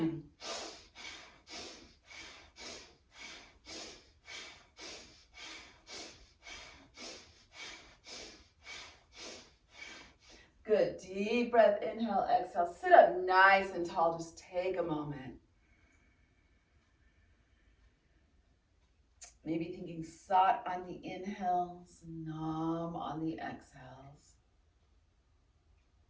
Good, deep breath, inhale, exhale. Sit up nice and tall, just take a moment. Maybe thinking sat on the inhales, nam on the exhales.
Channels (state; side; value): identical; both; correlation 1.00